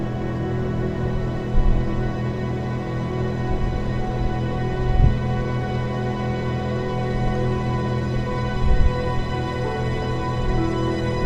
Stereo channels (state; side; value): identical; both; correlation 1.00